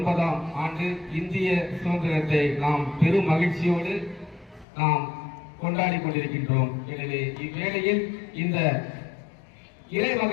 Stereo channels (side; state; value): right; drops out; at 4.7 s